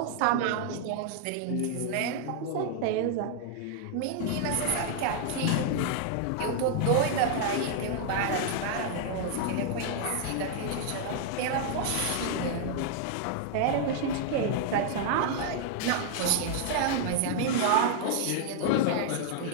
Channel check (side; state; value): both; different; correlation 0.00